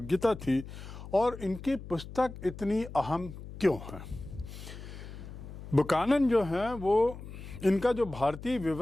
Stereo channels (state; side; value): noise; left; hum, 12 dB below the sound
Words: थी और इनकी पुस्तक इतनी अहम क्यों है। बुकानन जो हैं वो, इनका जो भारतीय